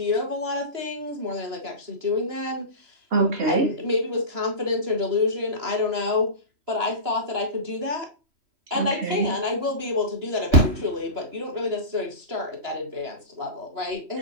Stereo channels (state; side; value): late; left; 2.9 ms